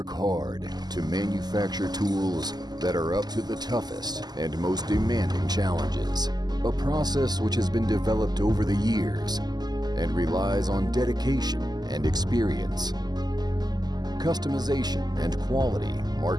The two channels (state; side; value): late; left; 0.20 ms